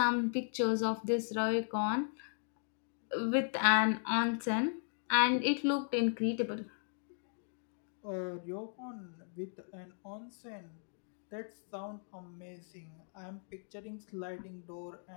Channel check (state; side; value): silent; right; digital silence